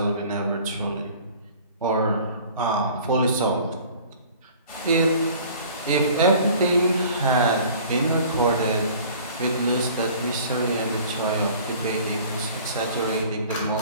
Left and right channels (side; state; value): both; inverted; correlation -0.48